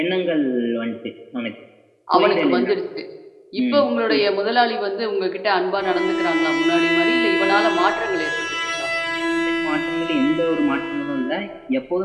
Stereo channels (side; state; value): both; identical; correlation 1.00